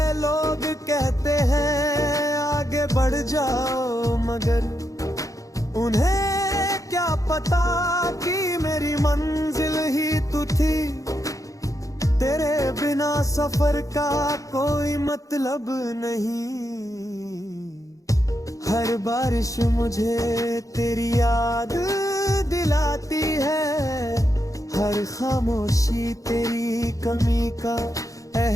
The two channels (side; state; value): right; late; 0.16 ms